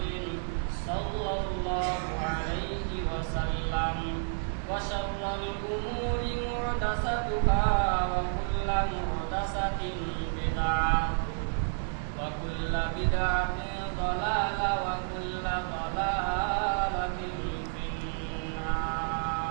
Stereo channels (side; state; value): left; silent; digital silence